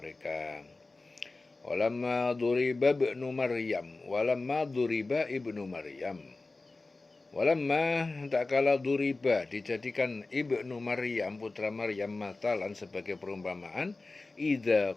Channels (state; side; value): quieter; right; 3.4 dB